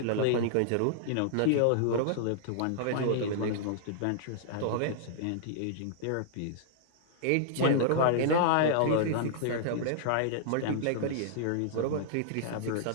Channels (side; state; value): both; different; correlation -0.01